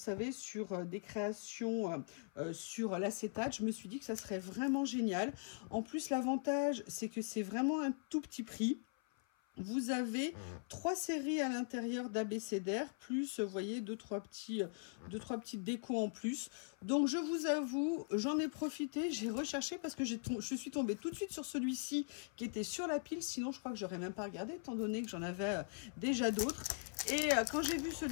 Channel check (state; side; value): silent; right; 51 dB below the other